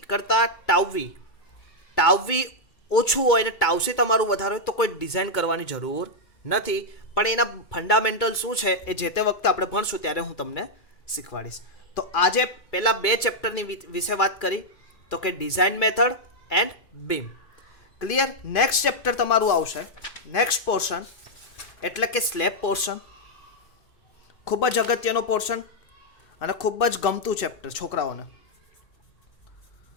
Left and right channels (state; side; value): late; right; 2.2 ms